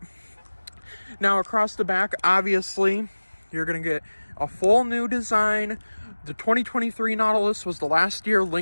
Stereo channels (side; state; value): both; inverted; correlation -1.00